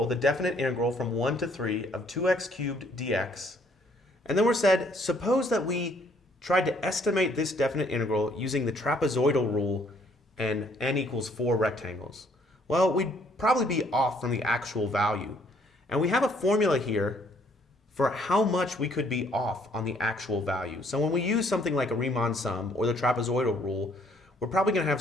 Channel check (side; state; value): both; normal; correlation 0.64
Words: the definite integral from 1 to 3 of 2x cubed dx. And then we're said, suppose that we tried to estimate this definite integral using the trapezoidal rule and n equals 4 rectangles. Well, we'd probably be off from the actual value. And we have a formula here for how much we could be off on the actual value. So when we use something like a Riemann sum or the trapezoidal rule, we're probably going to have